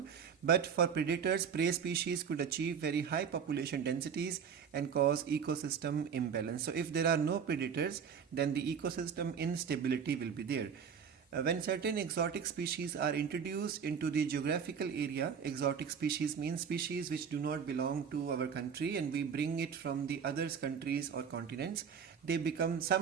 But for predators, prey species could achieve very high population densities and cause ecosystem imbalance. So if there are no predators, then the ecosystem instability will be there. When certain exotic species are introduced into the geographical area, exotic species means species which do not belong to our country and we bring it from the other countries or continents, they become,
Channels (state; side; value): quieter; left; 7.0 dB